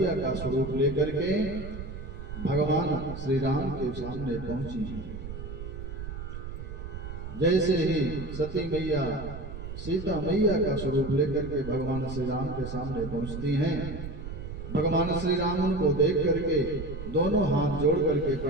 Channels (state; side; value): noise; right; rumble, 9 dB below the sound